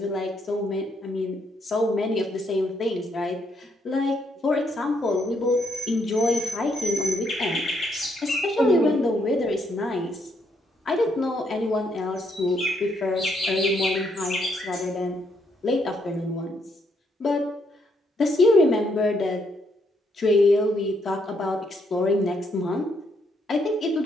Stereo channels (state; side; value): normal; both; correlation 0.74